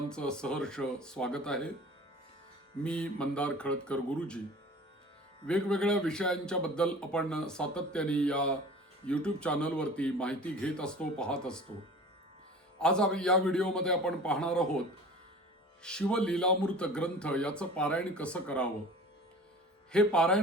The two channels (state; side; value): normal; both; correlation 0.41